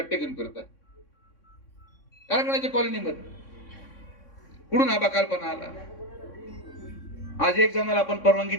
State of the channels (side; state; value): right; late; 3.6 ms